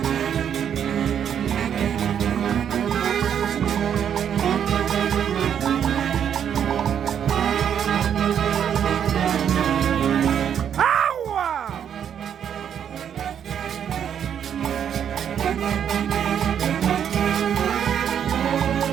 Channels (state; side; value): quieter; left; 8.7 dB